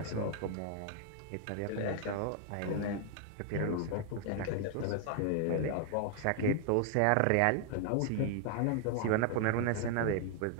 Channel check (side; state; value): both; different; correlation 0.00